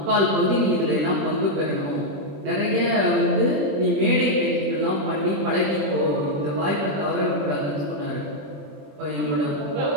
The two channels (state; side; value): late; left; 20 ms